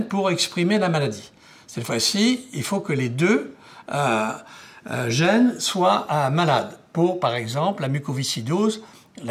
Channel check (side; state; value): both; identical; correlation 1.00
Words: pour exprimer la maladie. Cette fois-ci, il faut que les 2 gènes soient malades. Pour, par exemple, la mucoviscidose,